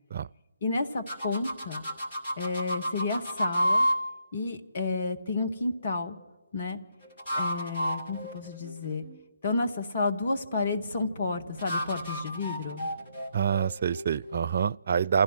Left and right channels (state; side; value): inverted; both; correlation -0.74